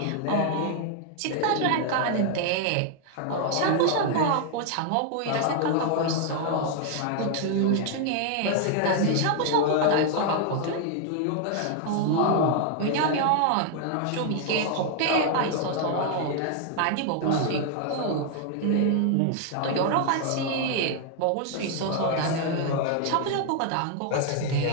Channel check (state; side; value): different; both; correlation 0.00